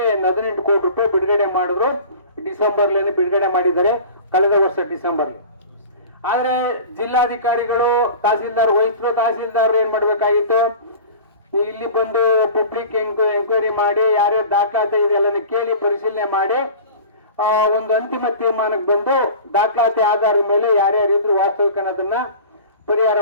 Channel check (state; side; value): inverted; both; correlation -0.39